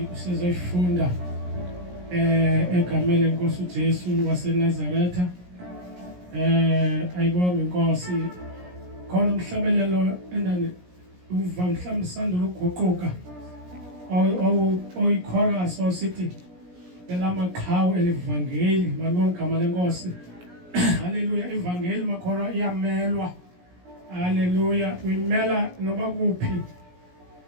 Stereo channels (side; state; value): left; late; 17 ms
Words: usizoyifunda egameni lenkosi uJesu waseNazaretha ayibonge inkosi khona umhlabelelo endane uva mhlawumbe sandula ukuguquka oyichorus osithi elamaqhawe elivangeli malibonge igama lenkosi haleluya ivangeli makholwa iyamelwa haleluya uyimela noba kuphi